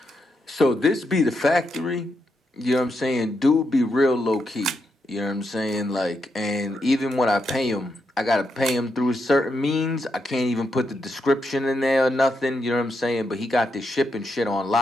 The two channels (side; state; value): both; normal; correlation 0.82